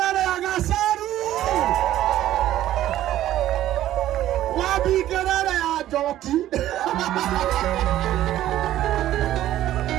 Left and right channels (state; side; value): quieter; left; 13.3 dB